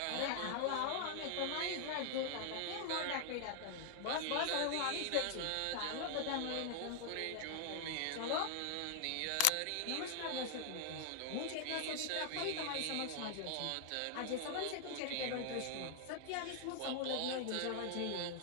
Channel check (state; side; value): different; both; correlation 0.00